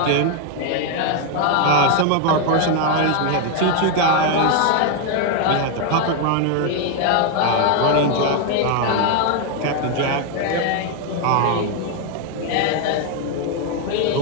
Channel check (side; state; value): both; different; correlation 0.01